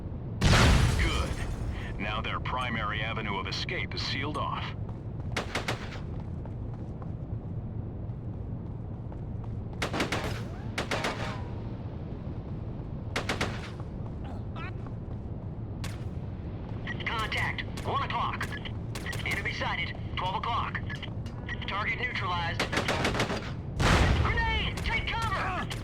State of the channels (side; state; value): both; identical; correlation 1.00